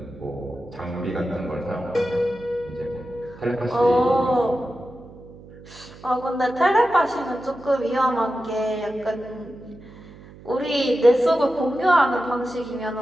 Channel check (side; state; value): right; noise; hum, 19 dB below the sound